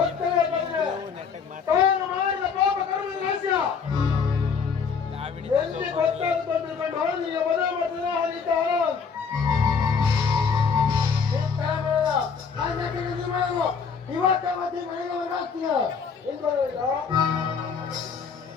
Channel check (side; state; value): right; quieter; 5.9 dB